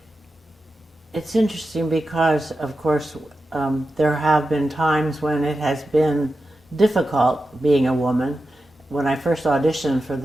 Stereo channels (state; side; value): normal; both; correlation 0.91